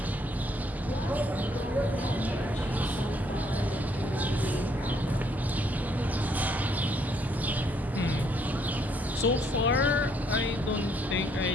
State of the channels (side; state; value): both; normal; correlation 0.69